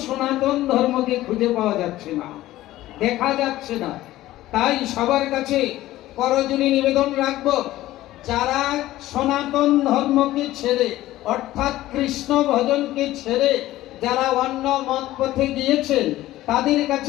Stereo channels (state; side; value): quieter; right; 15.6 dB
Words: সনাতন ধর্মকে খুঁজে পাওয়া যাচ্ছে না, দেখা যাচ্ছে না। তাই সবার কাছে করজোড়ে নিবেদন রাখবো, যারা সনাতন ধর্মকে ছেড়ে অর্থাৎ কৃষ্ণ ভজনকে ছেড়ে যারা অন্য মত পথে গিয়েছেন, তাদের